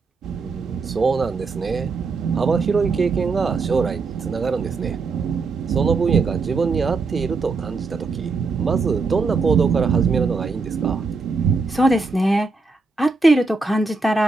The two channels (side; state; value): left; quieter; 4.1 dB